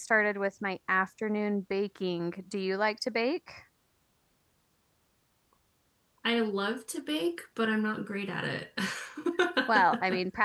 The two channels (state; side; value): identical; both; correlation 1.00